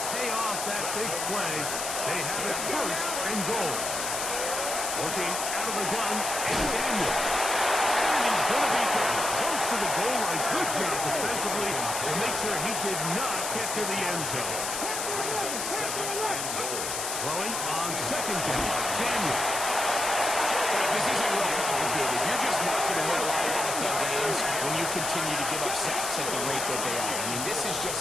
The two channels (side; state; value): left; noise; hiss, 3 dB below the sound